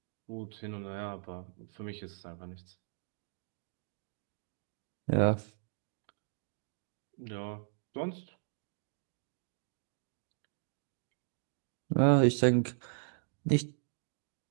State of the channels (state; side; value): silent; left; digital silence